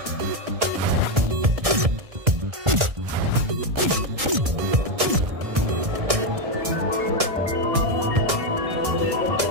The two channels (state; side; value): late; left; 1.6 ms